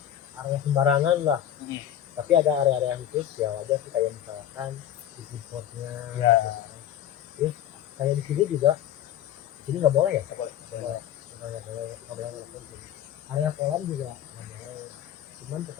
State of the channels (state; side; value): quieter; right; 10.8 dB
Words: area sembarangan lah. Tapi ada area-area khusus ya wajar sih, kayak misalkan di foodcourtnya. Ya. Terus kayak di sini juga, di sini nggak boleh ya? Nggak boleh. Nggak boleh ngerokok di sini. Area kolam juga nggak boleh. Cuman